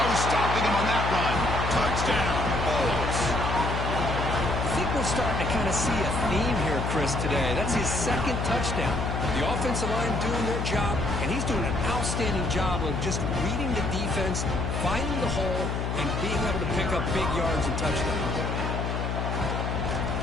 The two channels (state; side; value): noise; left; hum, 1 dB below the sound